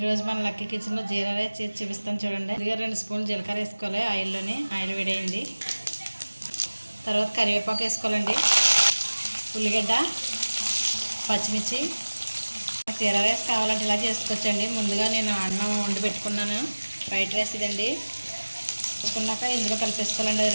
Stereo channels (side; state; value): both; inverted; correlation -1.00